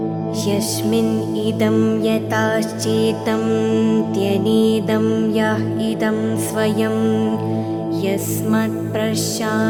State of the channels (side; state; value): both; identical; correlation 1.00